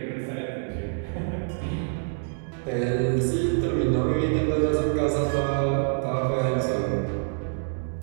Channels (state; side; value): silent; left; 61 dB below the other